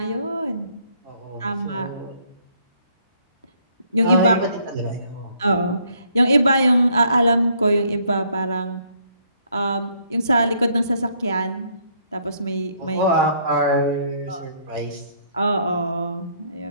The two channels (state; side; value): inverted; both; correlation -0.67